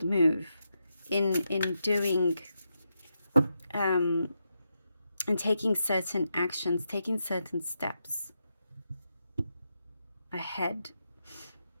move in doing and taking certain actions, taking certain steps ahead,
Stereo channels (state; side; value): inverted; both; correlation -0.85